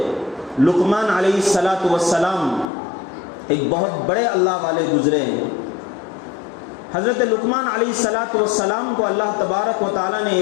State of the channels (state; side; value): drops out; right; at 2.7 s